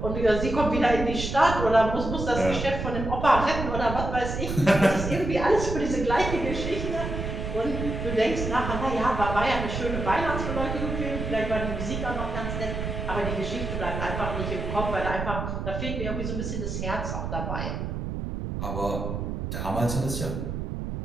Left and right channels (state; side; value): noise; right; rumble, 4 dB below the sound